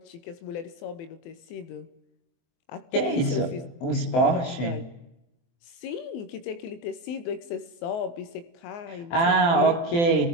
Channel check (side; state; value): right; late; 24 ms